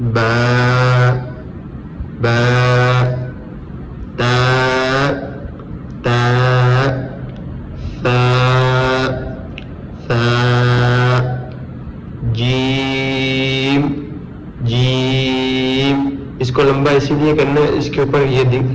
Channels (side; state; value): both; identical; correlation 1.00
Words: با تا ثا جیم۔ اس کو لمبا اسی لیے کرنا ہے، اس کے اوپر یہ